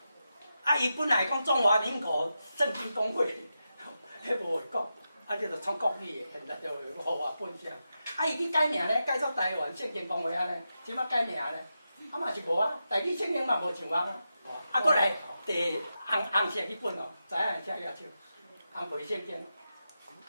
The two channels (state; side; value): inverted; both; correlation -0.89